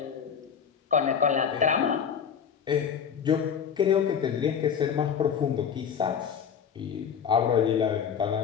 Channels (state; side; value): quieter; right; 7.5 dB